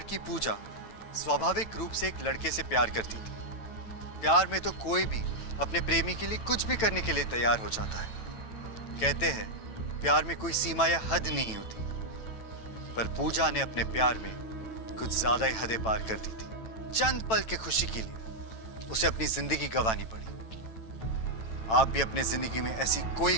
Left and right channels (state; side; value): late; right; 9.0 ms